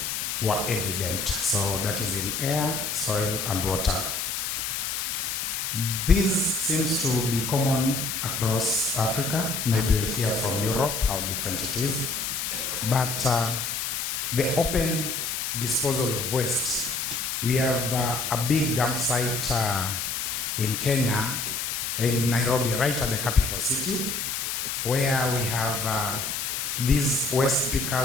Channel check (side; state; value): left; noise; hiss, 2 dB below the sound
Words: were evident. So that is in air, soil, and water. This seems to be common across Africa. Maybe we'll hear from Europe how different it is. But the open disposal of waste, we have a big dump site in Kenya, in Nairobi, right at the capital city, where we have these waste